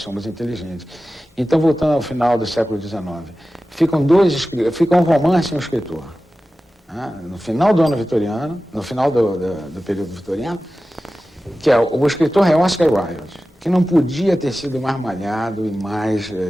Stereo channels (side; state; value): both; normal; correlation 0.95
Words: inteligentes. Então, voltando ao final do século XIX, fica um romance e um escritor. No final do ano vitoriano, no final do período vitoriano, que o escritor é Oscar Wilde, que não podia ter sido mais malhado e mais,